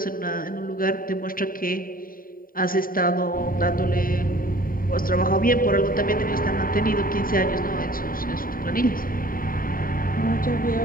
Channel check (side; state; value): right; late; 0.41 ms